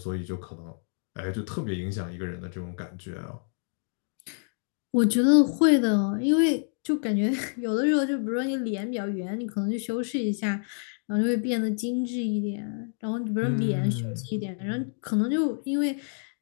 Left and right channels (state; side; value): silent; right; digital silence